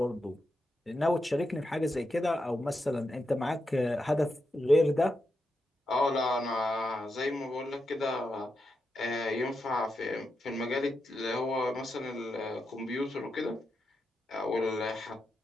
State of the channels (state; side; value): normal; both; correlation 0.86